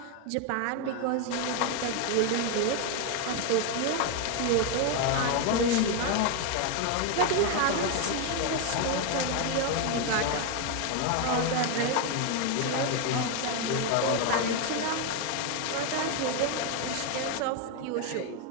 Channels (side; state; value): both; different; correlation 0.01